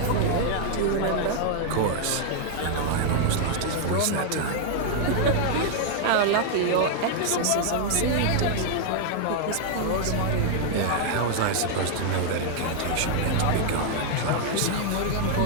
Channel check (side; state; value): both; different; correlation 0.00